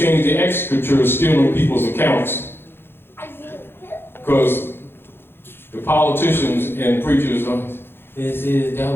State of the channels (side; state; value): right; late; 0.11 ms